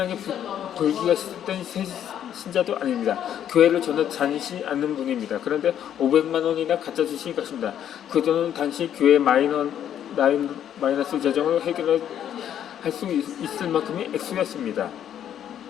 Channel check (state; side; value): quieter; right; 10.0 dB